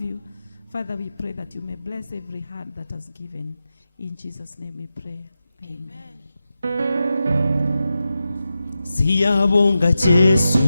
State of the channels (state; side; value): inverted; both; correlation -0.91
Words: Father, we pray that you may bless every heart that has given. In Jesus' name we pray. Amen. siyabonga Jesu,